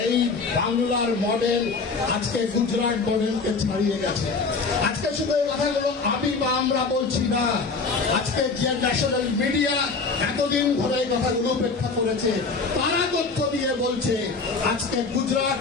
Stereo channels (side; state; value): right; quieter; 4.3 dB